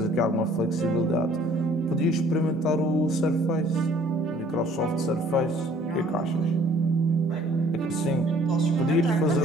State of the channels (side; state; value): both; normal; correlation 0.57